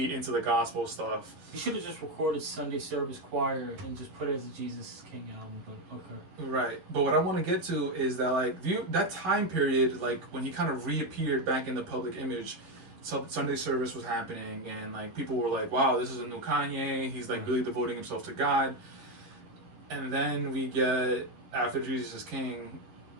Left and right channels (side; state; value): left; late; 11 ms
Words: into the gospel stuff. He should have just recorded Sunday service choir and just put it as a Jesus is King album, but okay. Right. But what I want to get to is that, like, that time period, like, when he kind of reappeared back in the public image, Sunday service was happening, and, like, people were like, wow, this is a new Kanye. He's, like, really devoting himself to God. And then we get, after Jesus is King,